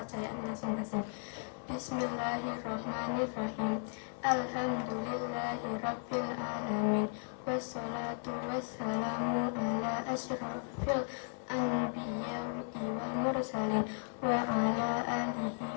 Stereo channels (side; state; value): right; silent; 54 dB below the other